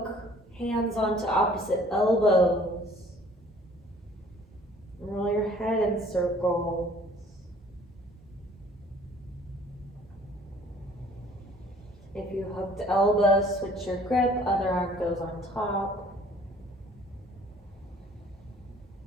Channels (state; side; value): normal; both; correlation 0.55